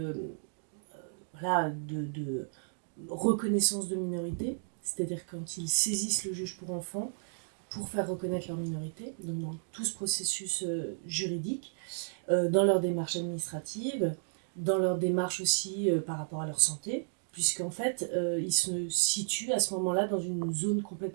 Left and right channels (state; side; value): silent; left; digital silence